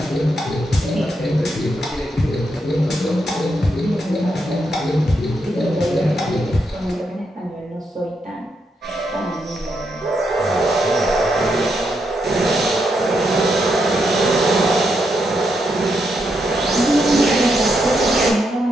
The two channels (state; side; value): normal; both; correlation 0.81